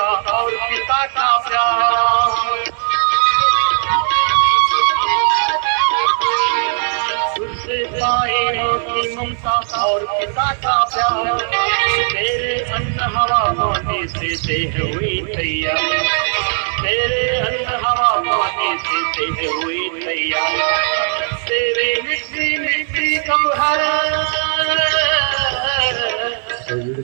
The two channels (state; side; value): silent; left; 66 dB below the other